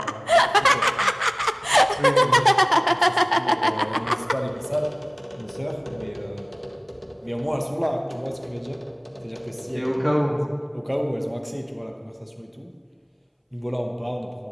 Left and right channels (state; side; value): identical; both; correlation 1.00